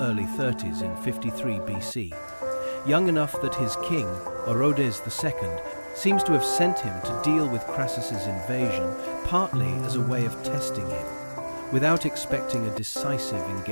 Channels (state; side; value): inverted; both; correlation -1.00